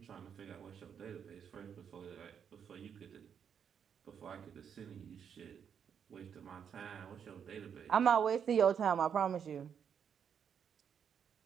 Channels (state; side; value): quieter; left; 7.7 dB